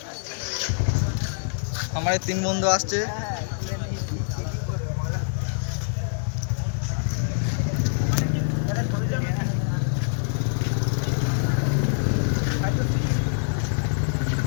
আমার এই 3 বন্ধু আসছে। হ্যাঁ খুলে নিয়েছি কি করে বলো আরে ধরে দিলি হ্যাঁ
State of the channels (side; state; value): right; silent; digital silence